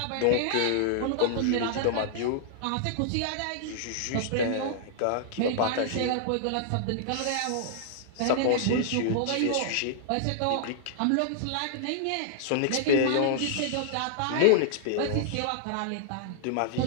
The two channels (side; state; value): both; different; correlation -0.01